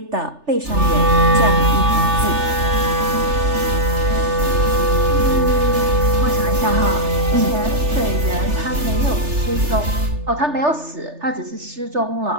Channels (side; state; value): left; late; 3.3 ms